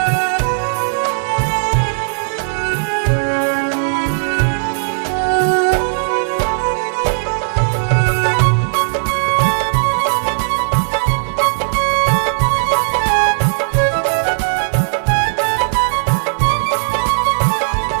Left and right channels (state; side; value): silent; left; digital silence